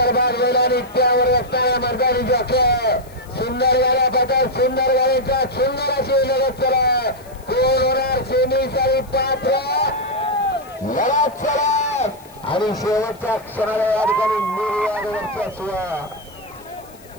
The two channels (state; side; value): noise; left; hiss, 25 dB below the sound